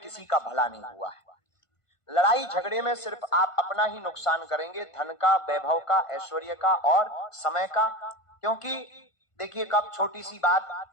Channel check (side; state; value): right; late; 1.5 ms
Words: का भला नहीं हुआ है। लड़ाई झगड़े में सिर्फ आप अपना ही नुकसान करेंगे, धन का, वैभव का, ऐश्वर्य का और समय का। क्योंकि देखिए, कब छोटी सी बात